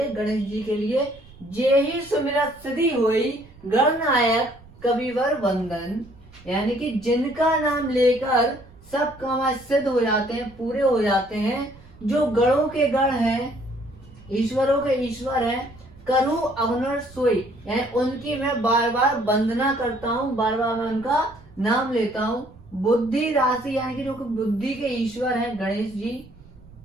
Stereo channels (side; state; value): right; noise; rumble, 23 dB below the sound